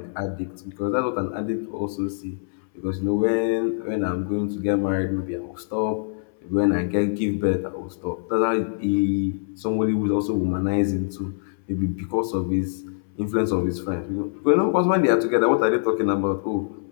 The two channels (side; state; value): right; silent; 62 dB below the other